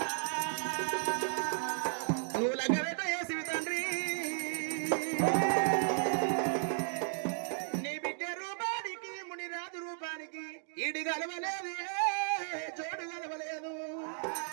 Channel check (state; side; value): silent; left; digital silence